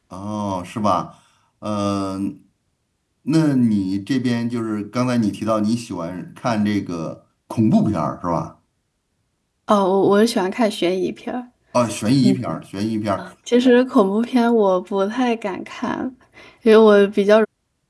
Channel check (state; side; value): identical; both; correlation 1.00